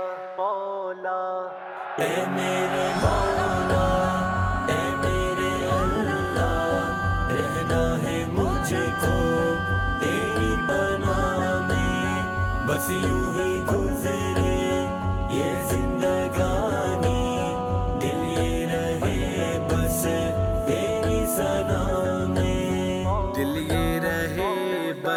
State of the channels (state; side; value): identical; both; correlation 1.00